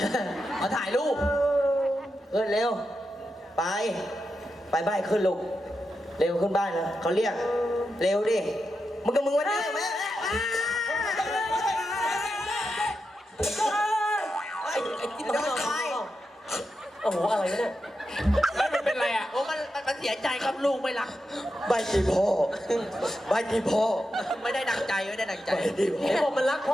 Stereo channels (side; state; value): both; normal; correlation 0.87